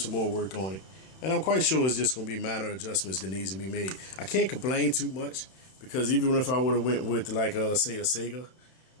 more work on it. And I'm quite sure it's just going to be minor adjustments that needs to be made. I can't complain too much, because even if I would have went with, like, say a Sega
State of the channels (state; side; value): late; right; 31 ms